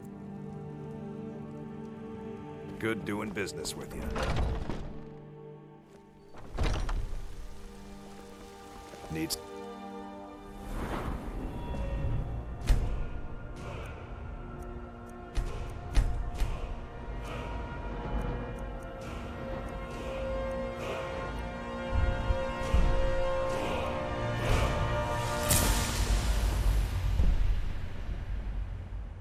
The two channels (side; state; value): both; identical; correlation 1.00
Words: Good doing business with you. Needs...